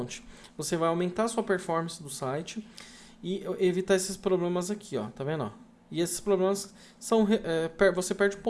Você vai aumentar a sua performance do site e evitar esses problemas aqui, ó. Tá vendo? Ó? E esses problemas são você perde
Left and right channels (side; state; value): both; identical; correlation 1.00